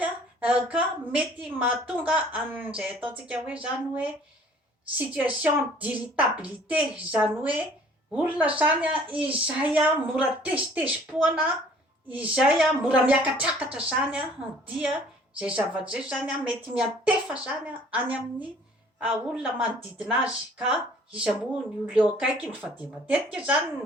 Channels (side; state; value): both; normal; correlation 0.54